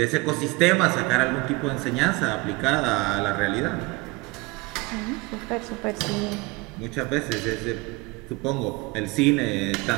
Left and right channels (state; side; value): quieter; left; 24.7 dB